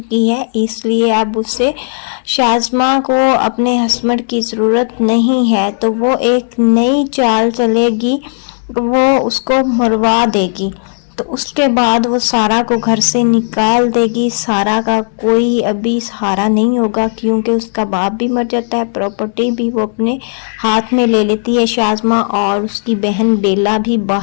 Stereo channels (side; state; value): right; silent; digital silence